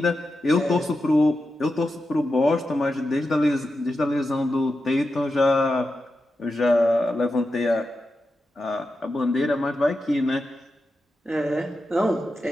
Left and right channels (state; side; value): normal; both; correlation 0.89